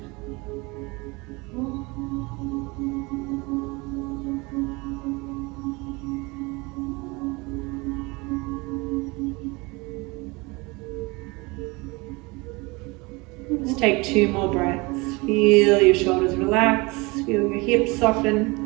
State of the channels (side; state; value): left; quieter; 25.5 dB